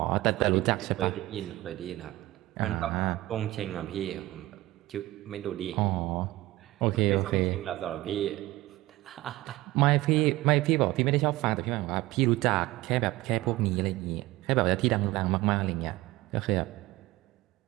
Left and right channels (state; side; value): quieter; left; 18.1 dB